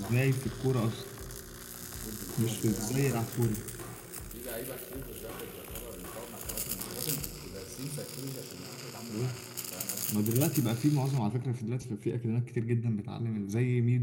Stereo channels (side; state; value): both; identical; correlation 1.00